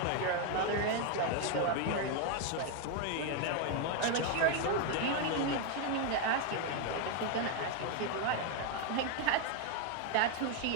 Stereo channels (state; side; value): different; both; correlation 0.01